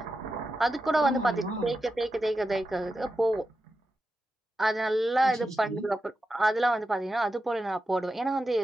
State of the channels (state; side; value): normal; both; correlation 0.89